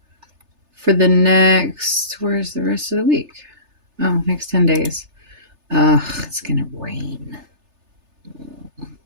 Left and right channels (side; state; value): left; late; 3.3 ms